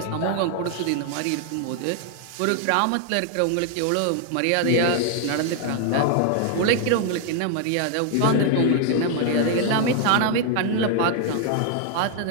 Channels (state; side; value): different; both; correlation 0.00